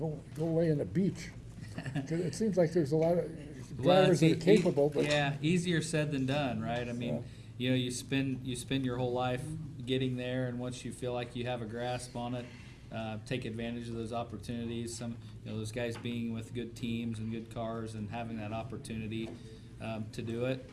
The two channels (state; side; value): identical; both; correlation 1.00